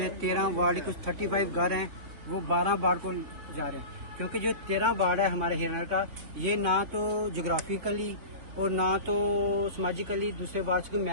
13 वार्ड कुछ 35 घर हैं वो 12 वार्ड को जा रहे हैं, क्योंकि जो 13 वार्ड है हमारे हीरानगर का, ये ना तो जोग्राफिकली और ना तो समाजिकली दूसरे वार्ड को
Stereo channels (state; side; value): late; left; 3.6 ms